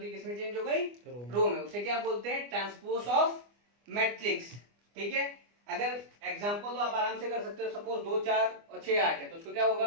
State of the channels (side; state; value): left; late; 25 ms